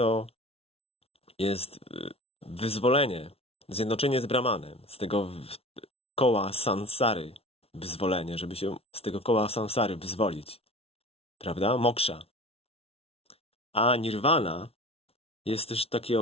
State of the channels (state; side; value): late; right; 0.29 ms